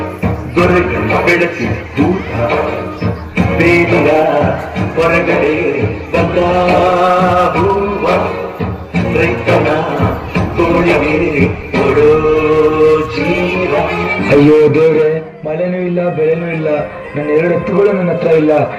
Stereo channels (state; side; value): identical; both; correlation 1.00